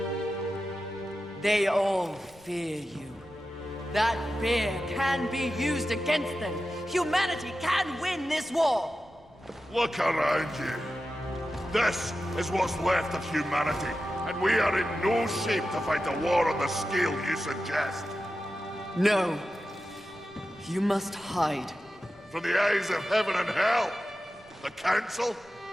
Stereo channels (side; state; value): both; normal; correlation 0.92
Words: They all fear you. That fear can be used against them. Humanity can win this war. Look around you. This is what's left of humanity, and we are in no shape to fight a war on the scale you suggest. No. You must hide. From the eyes of heaven and hell. The Council?